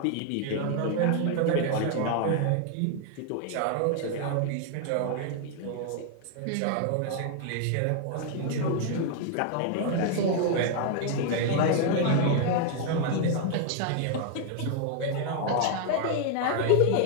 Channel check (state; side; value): different; both; correlation 0.00